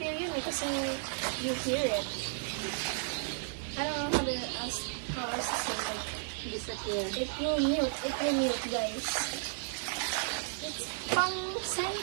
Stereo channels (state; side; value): silent; left; 55 dB below the other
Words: yun kasi you hear it. I don't know how else to say Disappear. It will mute guys. It's pang